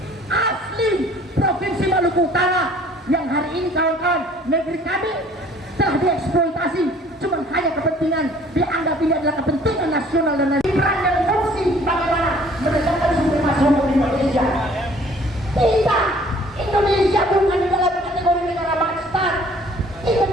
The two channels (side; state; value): both; normal; correlation 0.55